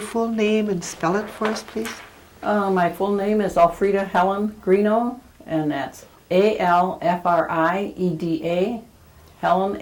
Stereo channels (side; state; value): both; identical; correlation 1.00